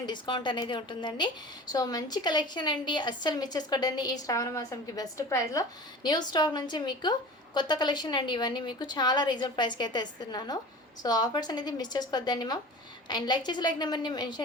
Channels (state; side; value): normal; both; correlation 0.37